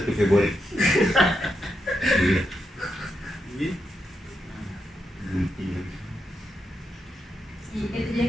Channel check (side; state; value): both; normal; correlation 0.84